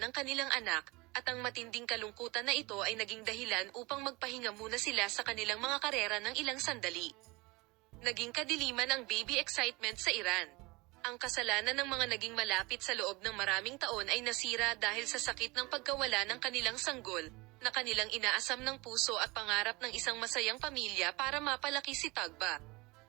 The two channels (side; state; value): left; quieter; 24.2 dB